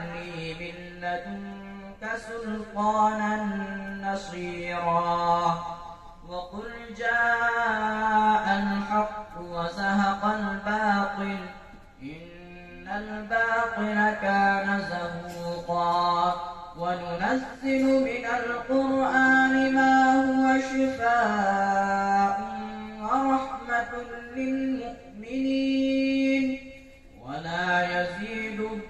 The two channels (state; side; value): identical; both; correlation 1.00